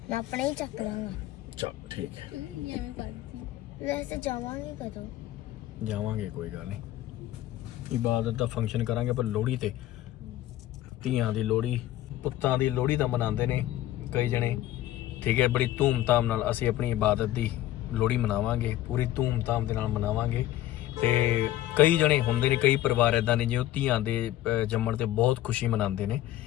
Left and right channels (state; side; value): quieter; right; 14.2 dB